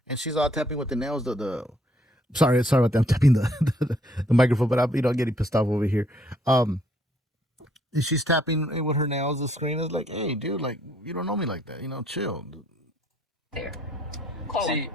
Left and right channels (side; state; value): both; normal; correlation 0.66